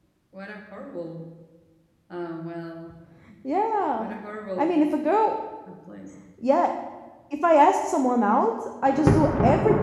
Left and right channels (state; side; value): identical; both; correlation 1.00